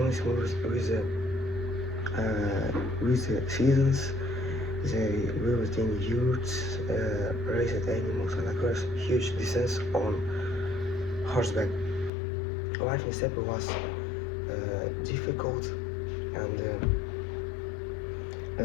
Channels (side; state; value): right; drops out; at 12.1 s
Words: moved with the seasons. They lived in yurts, raised animals, and across huge distances on horseback. Life in steppe was difficult, and